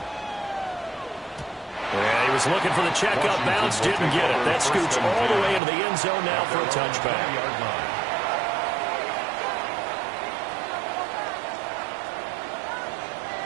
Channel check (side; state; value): left; drops out; at 5.6 s